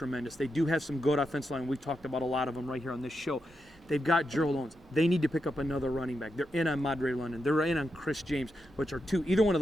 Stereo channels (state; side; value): normal; both; correlation 0.86